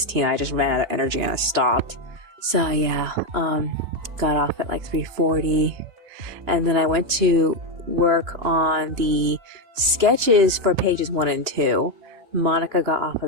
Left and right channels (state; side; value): late; left; 2.9 ms